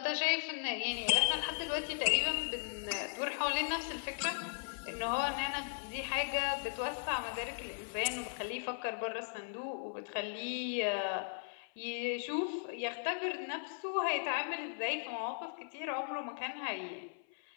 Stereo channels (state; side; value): silent; right; 53 dB below the other